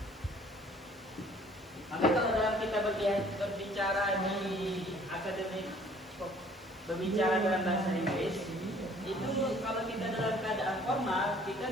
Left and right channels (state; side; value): noise; left; hiss, 29 dB below the sound